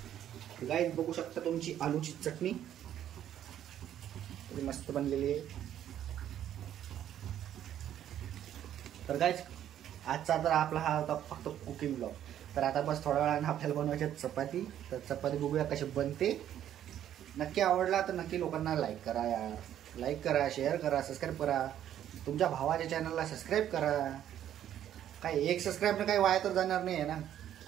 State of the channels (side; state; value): left; quieter; 10.9 dB